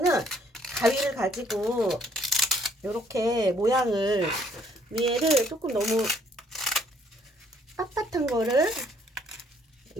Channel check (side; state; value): both; normal; correlation 0.64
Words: 가위를 가지고 이렇게 모양을 위에를 조금 너무 빳빳한 거를